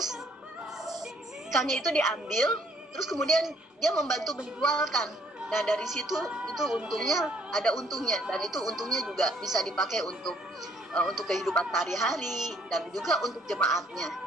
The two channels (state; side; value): normal; both; correlation 0.64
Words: ikannya itu diambil, terus kemudian dia membantu menjualkan. Nah, dari situ itu untungnya, ada untungnya, dan itu untungnya juga bisa dipakai untuk kehidupan sehari-hari dan juga untuk jemaatnya,